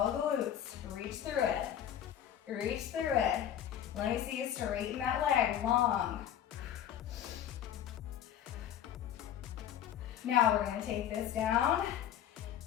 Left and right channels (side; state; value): right; quieter; 10.4 dB